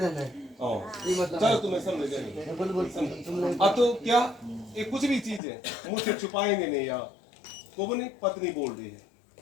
चलो तुम्हें समझ गए। अब तो क्या ये कुछ भी चीज है मुझसे छुपाएंगे नहीं यार, को बोले पत्नी बोल रही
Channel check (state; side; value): drops out; right; at 5.4 s